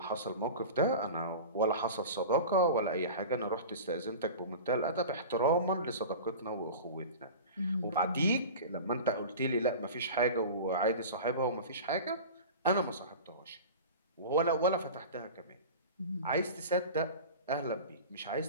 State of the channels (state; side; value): inverted; both; correlation -0.33